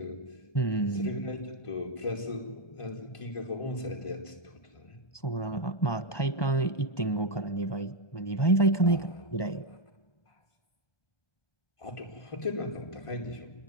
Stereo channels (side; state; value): right; late; 1.2 ms